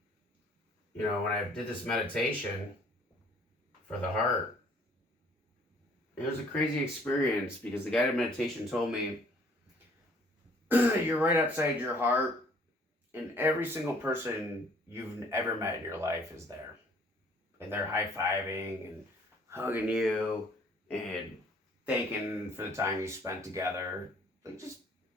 you know, when I did this meditation for the heart, it was a crazy experience because the guided meditation told me you're right outside your heart, and every single person you've ever met in your life is there. And they're high-fiving and hugging you and thanking for the time you spent together. Like, just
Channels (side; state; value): both; normal; correlation 0.58